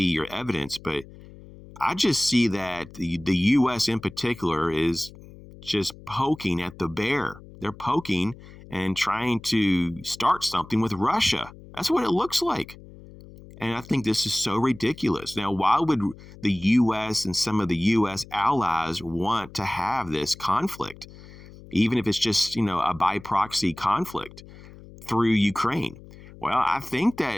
your evidence, but I just see that the U.S. in particular is just poking at the bear. They're poking and trying to start something with Russia. That's what it looks like. And I think this is so ridiculous. Now, why would the U.S. and some of the U.S. allies want to have this conflict, even if it's just, a by proxy conflict through Ukraine? Well, I think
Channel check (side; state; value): left; noise; hum, 19 dB below the sound